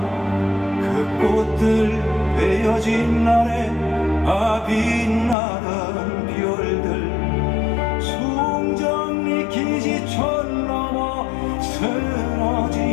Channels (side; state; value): right; drops out; at 5.4 s